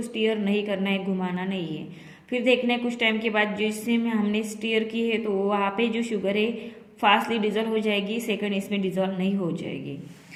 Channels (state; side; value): identical; both; correlation 1.00